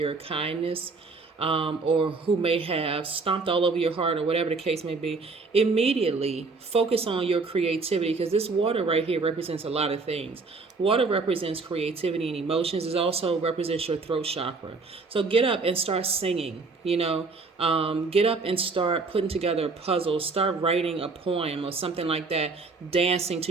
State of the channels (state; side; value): quieter; left; 4.1 dB